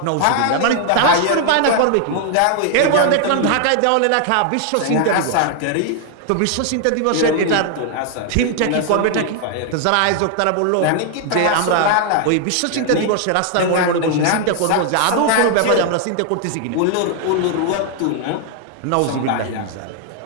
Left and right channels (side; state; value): both; different; correlation 0.00